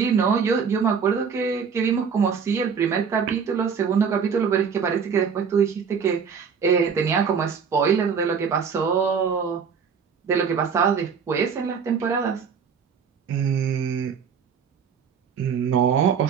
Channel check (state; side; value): quieter; left; 6.4 dB